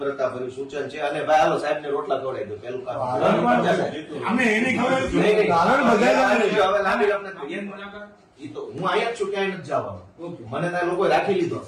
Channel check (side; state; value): both; identical; correlation 1.00